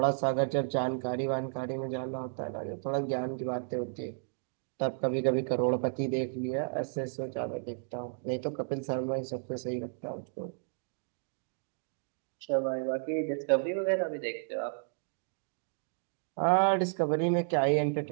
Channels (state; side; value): silent; left; digital silence